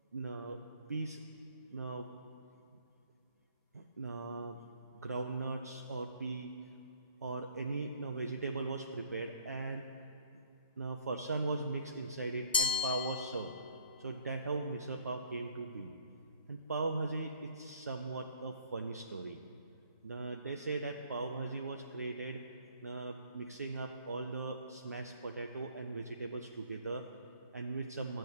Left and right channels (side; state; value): both; inverted; correlation -0.60